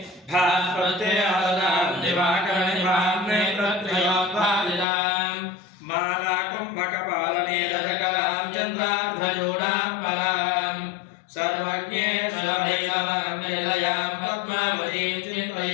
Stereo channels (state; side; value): drops out; right; at 4.9 s